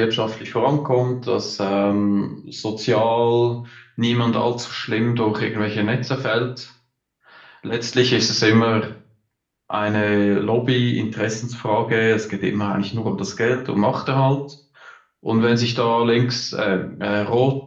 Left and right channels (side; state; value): both; identical; correlation 1.00